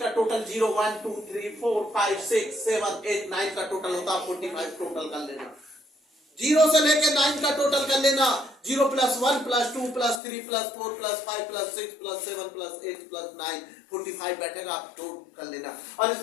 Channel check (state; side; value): drops out; right; at 10.2 s